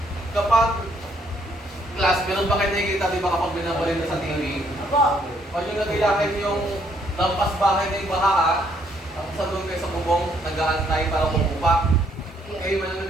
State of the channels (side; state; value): both; normal; correlation 0.69